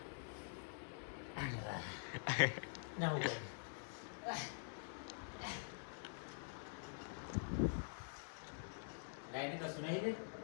ના ઉપર લાઈને કશું નહીં રે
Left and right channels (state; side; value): silent; right; digital silence